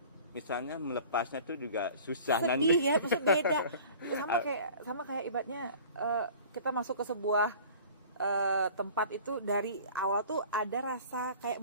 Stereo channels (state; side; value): inverted; both; correlation -0.45